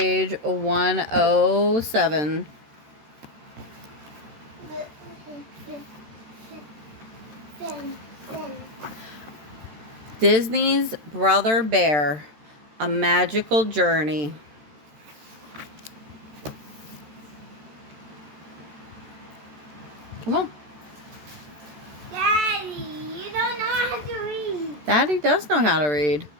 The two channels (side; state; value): left; late; 13 ms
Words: 107. Disney's Brother Bear, A Magical Journey. Come on. Daddy, you don't know how to read. Daddy does know how to read.